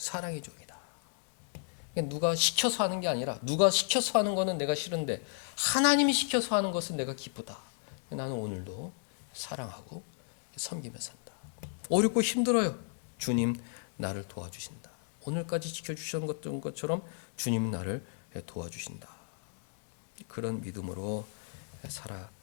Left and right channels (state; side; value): silent; right; digital silence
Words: 종이다. 누가 시켜서 하는 게 아니라, 누가 시켜서 하는 거는 내가 싫은데 하나님이 시켜서 하는 것은 내가 기쁘다. 나는 오늘도 사랑하고 섬기며 산다. 어렵고 힘들어요. 주님 나를 도와주신다. 오늘까지 지켜주셨던 것처럼 주님 나를 도와주신다. 그런 믿음으로